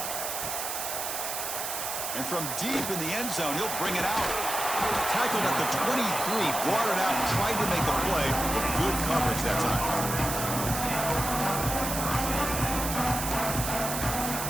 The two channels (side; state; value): right; noise; hiss, 4 dB below the sound